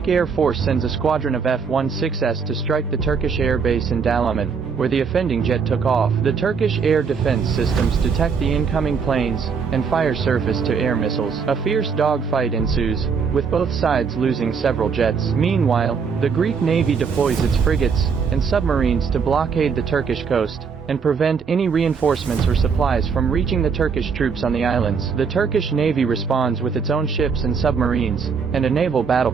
Air Force sends a squadron of F-16s to strike the Turkish air base in Dalaman, where the offending jet took off. The Turkish air defense systems detect the incoming planes and fire surface-to-air missiles. A fierce dogfight ensues, with both sides losing several jets. Meanwhile, the Greek Navy deploys its frigates and submarines to blockade the Turkish coast and prevent any reinforcements or supplies from reaching the Turkish troops on the islands. The Turkish Navy responds with its own ships and submarines, and a naval battle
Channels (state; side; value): quieter; left; 5.9 dB